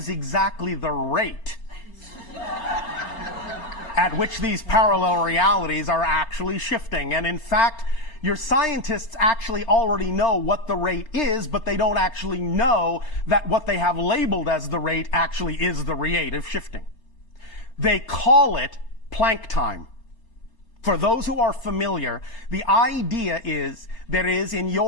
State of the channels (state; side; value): late; right; 4.3 ms